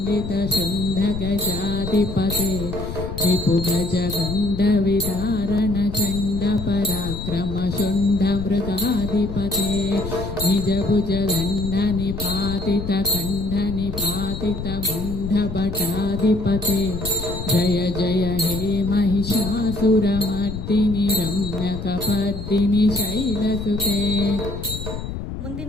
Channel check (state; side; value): noise; left; rumble, 7 dB below the sound